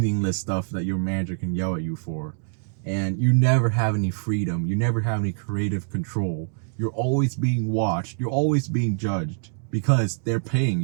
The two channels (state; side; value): silent; left; digital silence